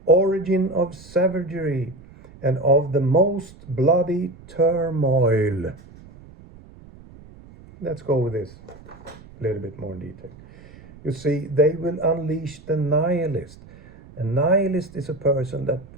origin of savagery, and of the most bloody turmoil. Let's go with this a little bit more in detail. You see, they will unleash the nihilist. A nihilist is a person that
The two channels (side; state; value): right; noise; rumble, 21 dB below the sound